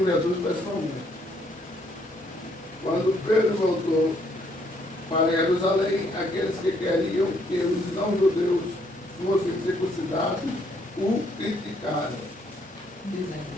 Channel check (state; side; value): normal; both; correlation 0.69